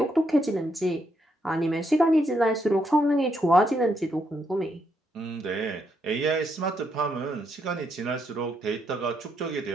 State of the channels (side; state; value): both; normal; correlation 0.77